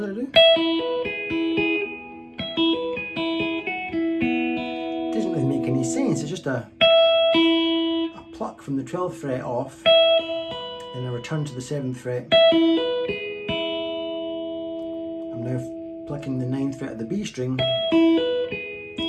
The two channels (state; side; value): identical; both; correlation 1.00